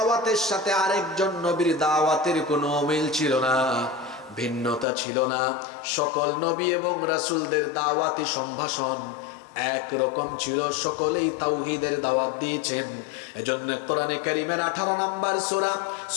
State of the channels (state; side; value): drops out; right; at 4.9 s